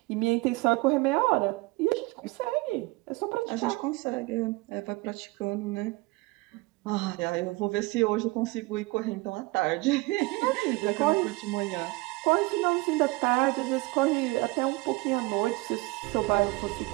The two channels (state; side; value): quieter; left; 22.7 dB